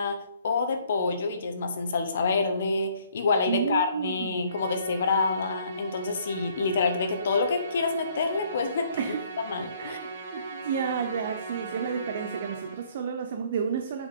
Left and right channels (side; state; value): both; inverted; correlation -0.62